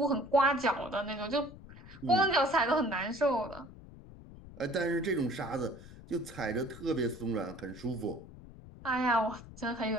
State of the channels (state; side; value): noise; left; rumble, 17 dB below the sound